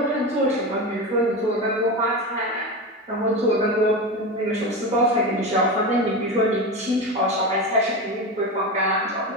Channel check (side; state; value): both; normal; correlation 0.22